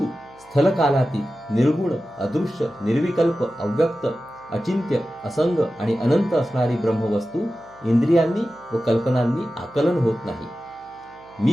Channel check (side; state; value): right; noise; hum, 29 dB below the sound